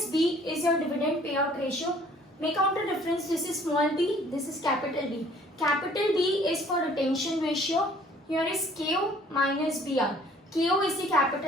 B is your dividend payout ratio. Make out the difference. This is small b, this is capital B. Capital B is for retention ratio. Here is KO minus BR. KO is the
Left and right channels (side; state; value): both; normal; correlation 0.56